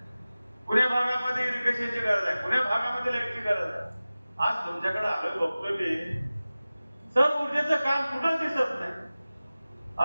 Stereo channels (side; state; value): both; inverted; correlation -0.97